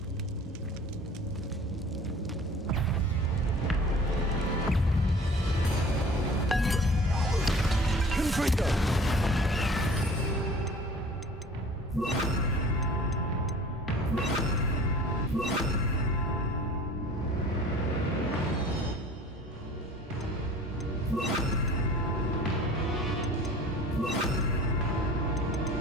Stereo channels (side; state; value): both; normal; correlation 0.45